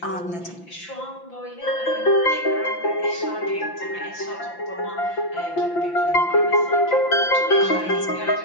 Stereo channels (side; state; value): right; late; 5.8 ms